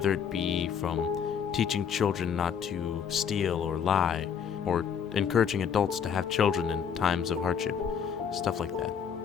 it be from teaching children not to steal or lie, or encouraging adults to have children in times of hardship, stuff like that.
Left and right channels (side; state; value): right; quieter; 7.4 dB